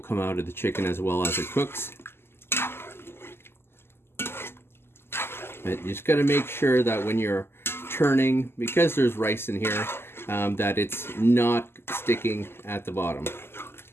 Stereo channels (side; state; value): right; late; 0.12 ms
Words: out of the chicken as well as it cooks. But you just got to make sure that when you're turning, because there's rice in here, that it's not sticking at the bottom.